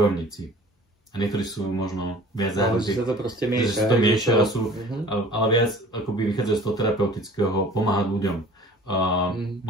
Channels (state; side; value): normal; both; correlation 0.47